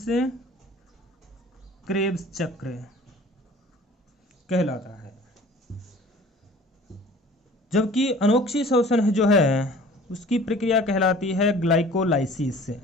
क्रेब्स चक्र कहलाता है। जबकि अनोक्सीशोषण जो है उसकी प्रक्रिया कहलाती है ग्लाइकोलाइसिस,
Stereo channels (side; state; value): both; normal; correlation 0.47